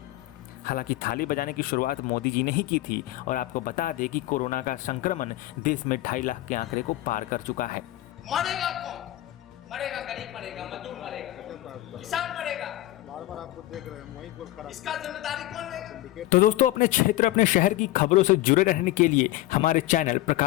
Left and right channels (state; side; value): quieter; right; 16.4 dB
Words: हालांकि थाली बजाने की शुरुआत मोदी जी ने ही की थी और आपको बता दें कि कोरोना का संक्रमण देश में 2.5 लाख के आंकड़े को पार कर चुका है। मरेगा कौन? मरेगा गरीब, मरेगा मजदूर, मरेगा किसान, मरेगा। बार-बार आपको देख रहे हैं, वहीं कुछ खराब। इसका जिम्मेदारी कौन लेगा? तो दोस्तों, अपने क्षेत्र अपने शहर की खबरों से जुड़े रहने के लिए हमारे channel